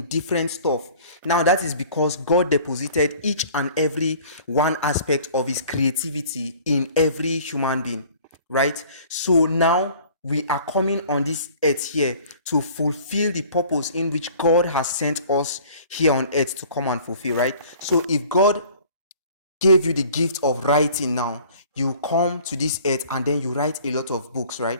different stuff. Now, that is because God deposited each and every one aspect of his creativity in every human being. Right? So now we are coming on this earth here to fulfill the purpose in which God has sent us here on earth to come and fulfill, right? So if God gave you the gift of writing now, you come to this earth and then you write a lot of books,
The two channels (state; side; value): inverted; both; correlation -0.50